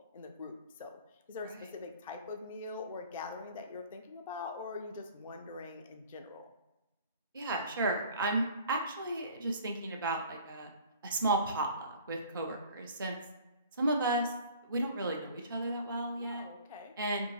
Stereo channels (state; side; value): inverted; both; correlation -0.49